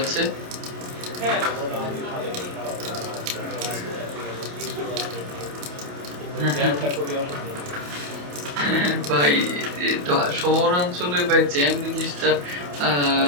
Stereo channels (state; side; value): late; left; 28 ms